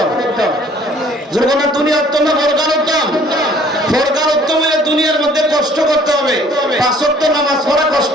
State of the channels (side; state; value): both; normal; correlation 0.57